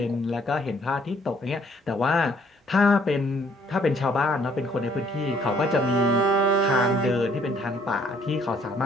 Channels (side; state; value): both; normal; correlation 0.63